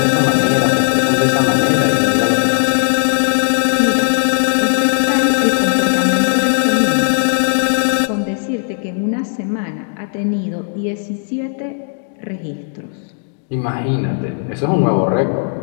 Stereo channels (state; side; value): silent; right; digital silence